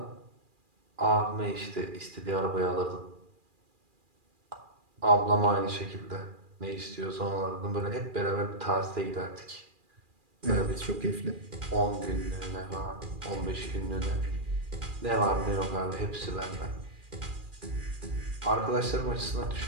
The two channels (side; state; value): left; late; 2.4 ms